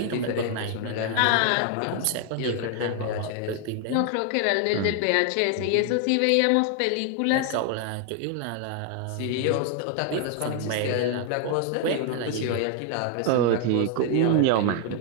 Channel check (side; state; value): both; different; correlation 0.00